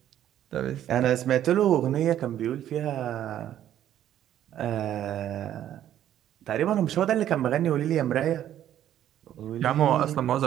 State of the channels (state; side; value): quieter; left; 11.4 dB